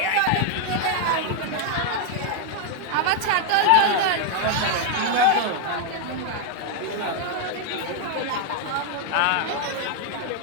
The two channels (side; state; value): both; different; correlation 0.00